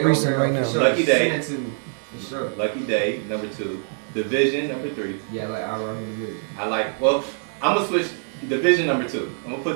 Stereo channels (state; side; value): silent; left; 63 dB below the other